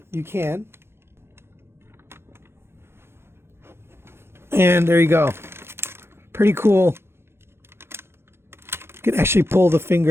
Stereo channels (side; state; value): left; late; 0.12 ms